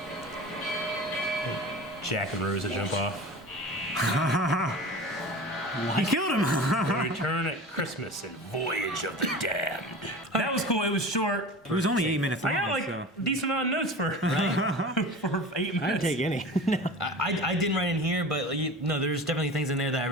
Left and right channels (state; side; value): normal; both; correlation 0.35